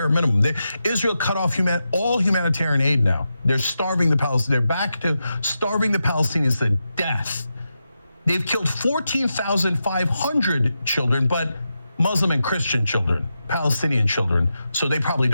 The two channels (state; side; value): inverted; both; correlation -0.88